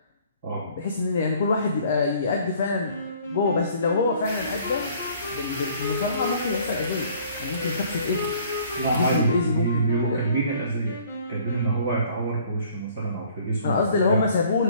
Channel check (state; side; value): inverted; both; correlation -0.56